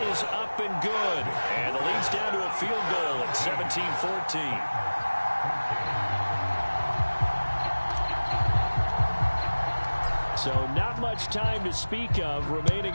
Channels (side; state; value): both; inverted; correlation -1.00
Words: is up and good. And the lead's down to a field goal at 17-14. So not much time to speak of remaining